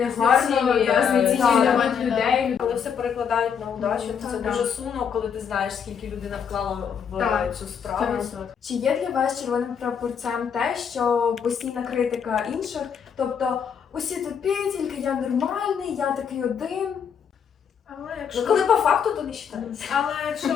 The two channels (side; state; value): right; quieter; 7.2 dB